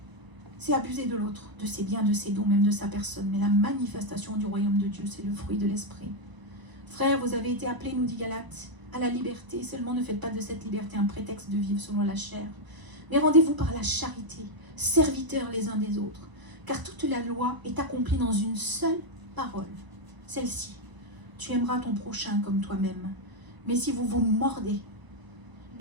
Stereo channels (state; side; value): late; left; 1.0 ms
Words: C'est abuser de l'autre, de ses biens, de ses dons, même de sa personne. Mais la manifestation du royaume de Dieu, c'est le fruit de l'esprit. Frères, vous avez été appelés, nous dit Galates, à la liberté. Seulement ne faites pas de cette liberté un prétexte de vivre selon la chair. Mais rendez-vous par la charité, serviteurs les uns des autres. Car toute la loi est accomplie dans une seule parole. Celle-ci, tu aimeras ton prochain comme toi-même. Mais si vous vous mordez